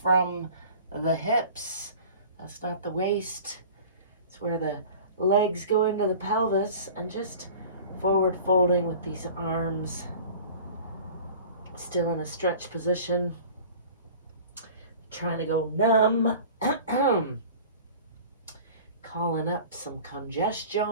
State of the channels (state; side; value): inverted; both; correlation -0.42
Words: from the hips. That's not the waist. It's where the legs go into the pelvis, and just forward folding with these arms still in a stretch position, trying to go numb, calling up some